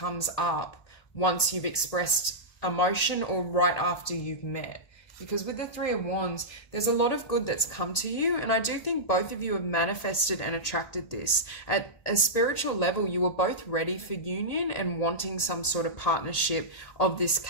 up once you've expressed emotion or right after you've met. Because with the Three of Wands, there's a lot of good that's come to you. And I do think both of you have manifested and attracted this. At a spiritual level, you were both ready for union and wanting some sort of partnership of this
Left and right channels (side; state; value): right; late; 1.8 ms